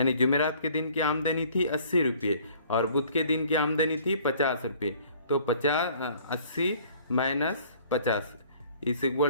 जुमेरात के दिन की आमदनी थी 80 रुपये और बुध के दिन की आमदनी थी 50 रुपये। तो 80 माइनस 50 इज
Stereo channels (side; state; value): both; inverted; correlation -0.54